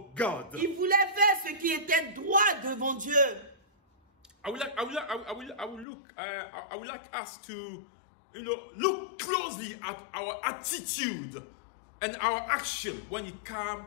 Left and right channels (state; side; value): drops out; right; at 5.9 s